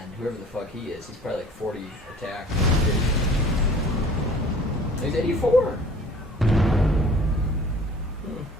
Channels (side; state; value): both; normal; correlation 0.49